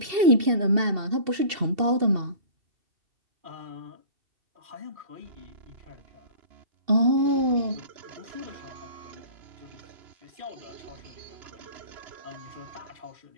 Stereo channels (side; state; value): left; late; 2.7 ms